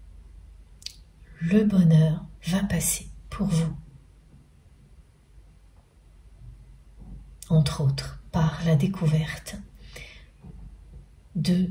Le bonheur va passer pour vous, entre autres par la découverte de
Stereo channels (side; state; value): both; identical; correlation 1.00